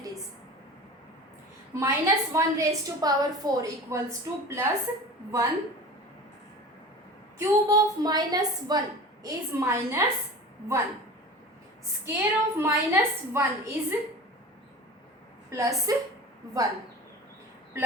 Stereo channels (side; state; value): both; normal; correlation 0.36